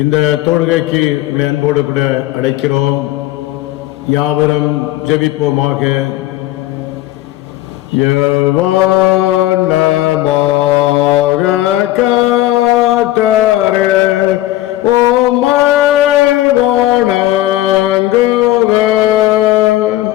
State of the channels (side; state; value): right; quieter; 15.7 dB